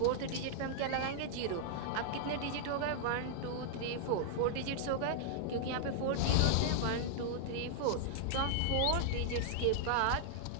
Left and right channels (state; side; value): different; both; correlation -0.01